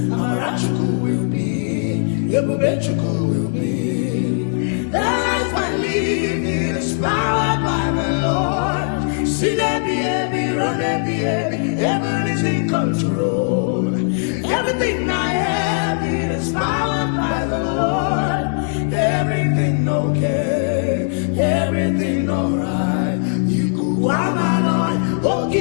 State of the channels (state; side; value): silent; right; digital silence